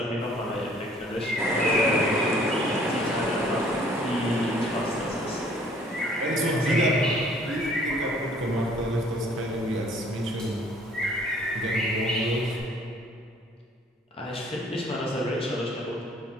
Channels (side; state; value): both; normal; correlation 0.57